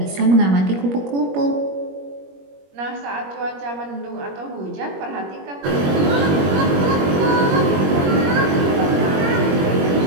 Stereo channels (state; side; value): late; left; 21 ms